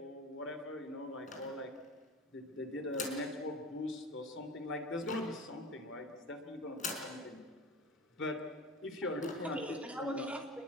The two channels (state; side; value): normal; both; correlation 0.32